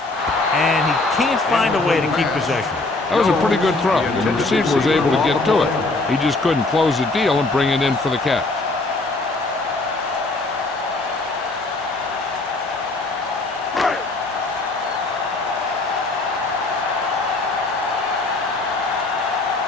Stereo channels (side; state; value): right; quieter; 3.2 dB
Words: and he can't find a way to keep possession. That was a pretty good throw, and the receiver was able to get to it. He just couldn't close the deal and bring it in for the catch.